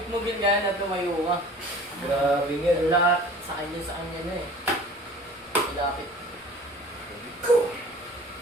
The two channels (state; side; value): normal; both; correlation 0.45